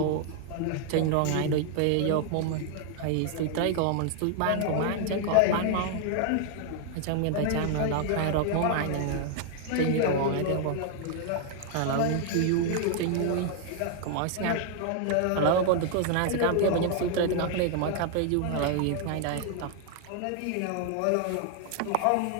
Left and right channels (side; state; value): both; different; correlation 0.00